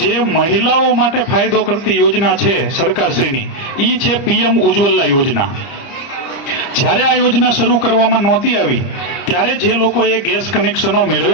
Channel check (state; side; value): late; right; 30 ms